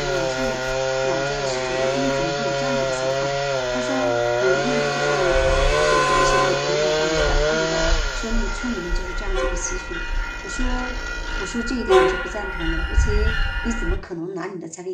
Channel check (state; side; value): identical; both; correlation 1.00